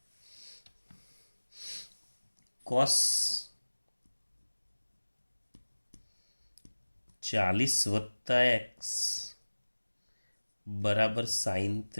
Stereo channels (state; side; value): inverted; both; correlation -1.00